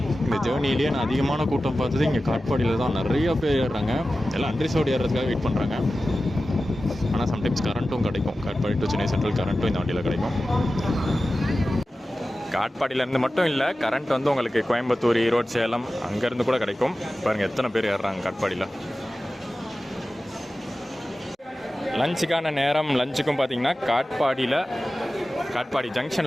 இந்த ஜேர்னிலேயே நான் அதிகமான கூட்டம் பார்த்தது இங்கே காட்பாடியில் தான். நிறைய பேர் ஏறுறாங்க. எல்லாம் அன்ரிசர்வ்டு ஏறுறதுக்காக வெயிட் பண்ணுறாங்க. ஆனால் சம்டைம்ஸ் கரண்ட்டும் கிடைக்கும். காட்பாடி டு சென்னை சென்ட்ரல் கரண்ட்டும் இந்த வண்டியில் கிடைக்கும். காட்பாடியிலேருந்து மட்டும் இல்லை, கரண்ட் வந்து உங்களுக்கு கோயம்புத்தூர், ஈரோடு, சேலம் அங்கேருந்து கூட கிடைக்கும். பாருங்கள் எத்தனை பேர் ஏறுறாங்க காட்பாடியில். லஞ்சுக்கான நேரம். லஞ்சுக்கும் பார்த்தீங்கன்னா காட்பாடி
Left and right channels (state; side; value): normal; both; correlation 0.95